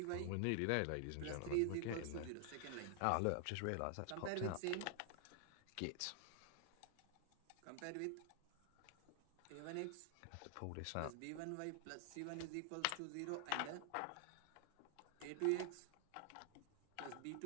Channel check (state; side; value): different; both; correlation 0.00